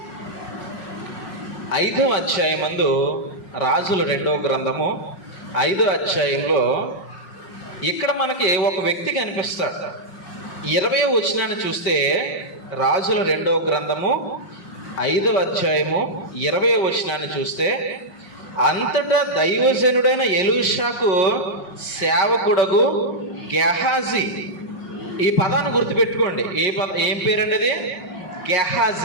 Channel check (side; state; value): right; late; 5.5 ms